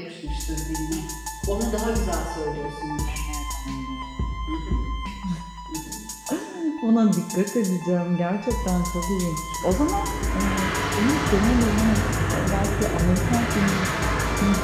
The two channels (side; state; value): both; identical; correlation 1.00